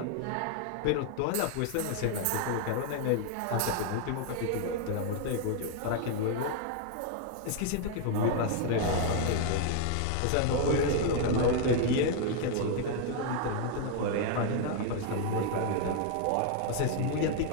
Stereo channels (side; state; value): both; different; correlation 0.00